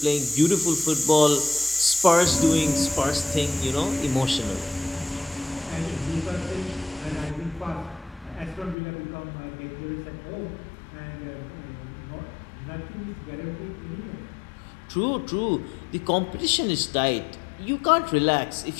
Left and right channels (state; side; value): drops out; right; at 8.8 s